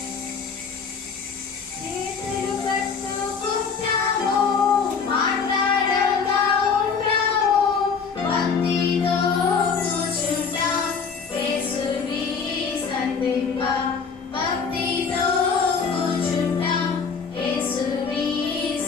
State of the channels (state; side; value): quieter; right; 5.7 dB